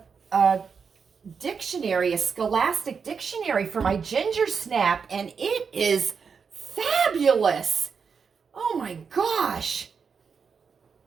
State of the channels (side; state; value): left; quieter; 5.9 dB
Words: a dictionary, a scholastic dictionary for my ginger snap, and it is fabulous. Oh my gosh.